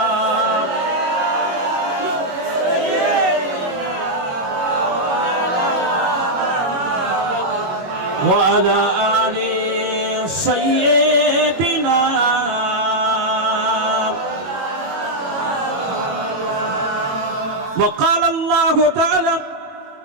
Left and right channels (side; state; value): left; late; 22 ms